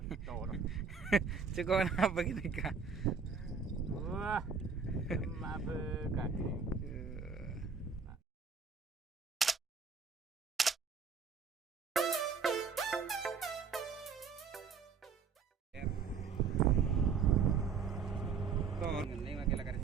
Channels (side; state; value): left; quieter; 5.8 dB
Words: Cukup apa gitu kak? Wah, merupakan. Ngening lagi lagi